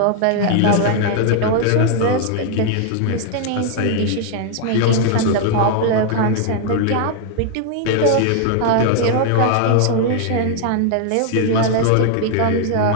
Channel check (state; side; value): different; both; correlation 0.00